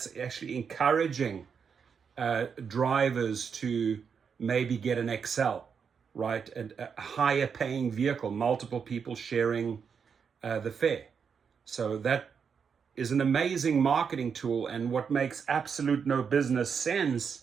actually encouraging drivers to maybe get an XL, right? A higher paying vehicle, multiple people sharing the fare. So that is an amazing marketing tool. And what makes absolute no business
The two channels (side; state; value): left; quieter; 6.5 dB